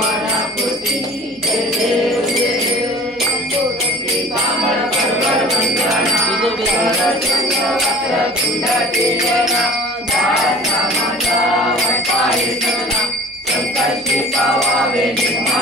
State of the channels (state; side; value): noise; right; hum, 28 dB below the sound